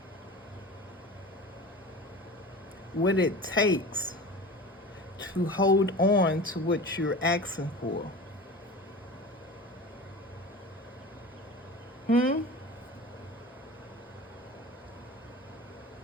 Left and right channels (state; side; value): normal; both; correlation 0.34